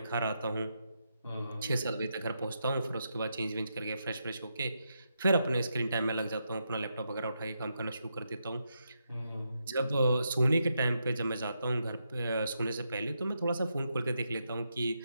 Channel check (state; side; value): inverted; both; correlation -0.83